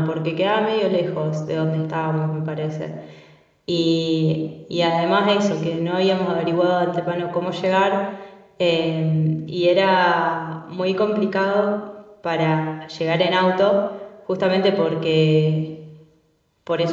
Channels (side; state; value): both; identical; correlation 1.00